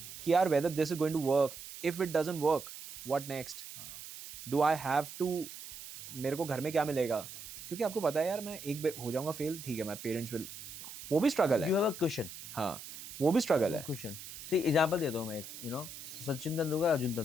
कि यार whether this is going to work, if it doesn't work what next, do I have to, मेरे को घर में क्या मिलेगा. क्योंकि आपको पता है यार मैं एक बार हो जाऊंगा फेल, ठीक है, मैं पेरेंट्स विल, वो भी स्ट्रगल है. You have a question. हाँ, वो भी स्ट्रगल है. क्वेश्चन सी एग्जांपल देता हूँ मैं एक, यू नो सचिन तेंदुलकर, अर्जुन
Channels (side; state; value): right; noise; hiss, 12 dB below the sound